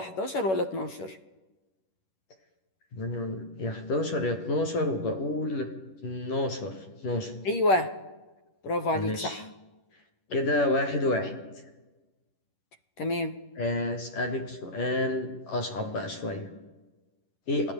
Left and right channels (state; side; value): late; right; 11 ms